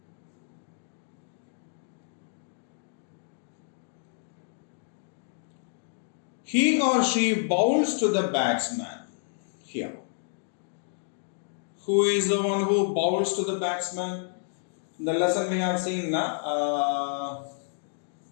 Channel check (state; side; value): silent; right; digital silence